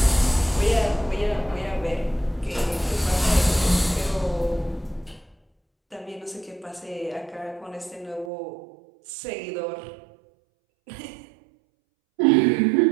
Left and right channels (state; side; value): drops out; left; at 8.3 s